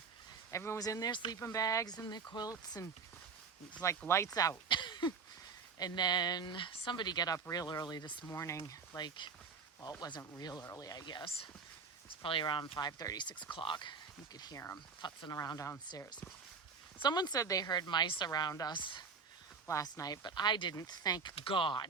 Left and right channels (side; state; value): left; quieter; 5.3 dB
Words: Everyone was in their sleeping bags and their quilts, and it was like lights out. And then somebody got up real early this morning. Like, well, it wasn't real early, I guess. It's probably around 5:30, 6 o'clock. You could hear them futzing around downstairs. Someone said they heard mice around us last night, but I didn't, thank